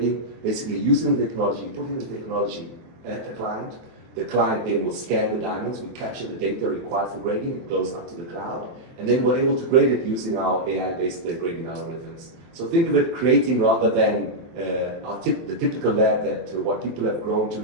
basically using the technology, putting the technology at the client. The client then will scan the diamonds, we capture the data required for grading, it goes up to the cloud, and then we're able to grade it using our AI-based grading algorithms. So think of it creating, rather than the typical lab that what people have grown to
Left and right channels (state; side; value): late; left; 23 ms